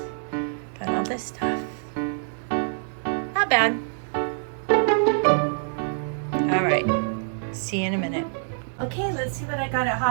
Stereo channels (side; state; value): left; silent; digital silence